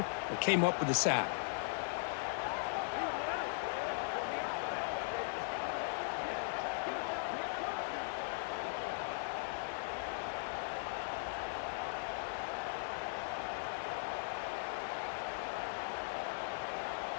and came up with the sack.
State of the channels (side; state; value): right; silent; digital silence